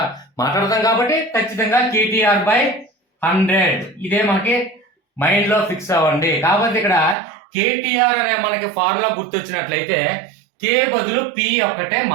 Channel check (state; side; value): drops out; left; at 7.2 s